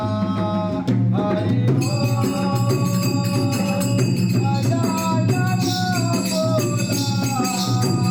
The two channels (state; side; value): identical; both; correlation 1.00